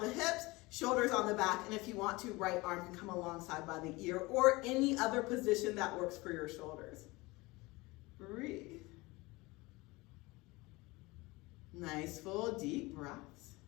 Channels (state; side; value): quieter; right; 22.7 dB